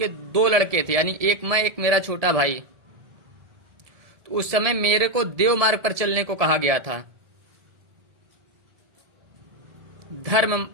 2 लड़के थे, यानी एक मैं एक मेरा छोटा भाई। तो उस समय मेरे को देव मार्ग पर चलने को कहा गया था,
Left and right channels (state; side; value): late; left; 1.7 ms